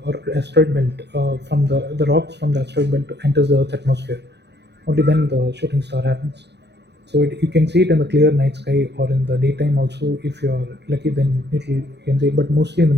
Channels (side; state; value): left; late; 0.50 ms